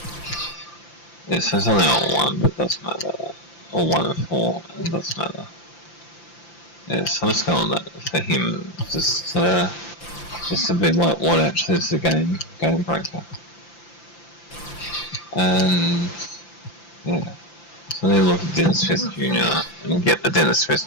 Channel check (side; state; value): right; late; 5.9 ms